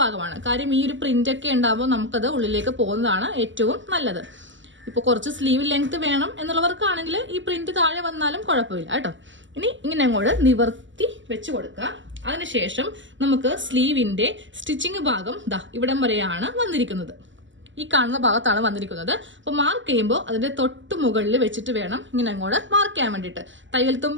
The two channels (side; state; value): left; late; 0.54 ms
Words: ഭാഗമാണ്. കാര്യം ഈ ഒരു പ്രിന്റ് ഒക്കെ ഉണ്ടാകുമ്പോൾ നമുക്കത് ഉള്ളിലേക്ക് പോകുന്നതാണ് ഏറ്റവും നല്ലത്. ഇപ്പോൾ കുറച്ച് സ്ലീവ് ലെങ്ത് വേണം എന്നുള്ളവർക്കാണെങ്കിൽ ഈ പ്രിന്റ് താഴെ വന്നാലും കുഴപ്പമില്ല കേട്ടോ. ഇനി ഇങ്ങനെ അങ്ങോട്ട് നിവർത്തി വെച്ച് കൊടുക്കുക. അതിനുശേഷം നമുക്ക് സ്ലീവിന്റെ സ്റ്റിച്ചിങ് ഭാഗം ഇവിടം വരെയാണ് വന്നിരിക്കുന്നത്. ഈ കാണുന്ന ഭാഗത്താണ് വന്നിരിക്കുന്നത്. അപ്പോൾ മാർക്ക് ചെയ്യുമ്പോൾ അതിന്റെ തൊട്ട് മുകളിൽ വെച്ചിട്ട് വേണം ഇങ്ങനെ അങ്ങോട്ട് മാർക്ക് ചെയ്യാൻ വേണ്ടിയിട്ട്. തയ്യൽ